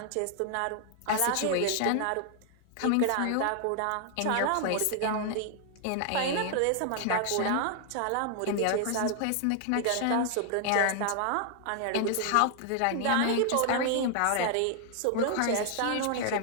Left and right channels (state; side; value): different; both; correlation 0.00